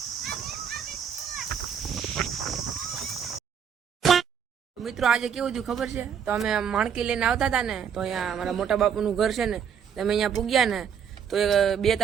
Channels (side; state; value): left; quieter; 7.8 dB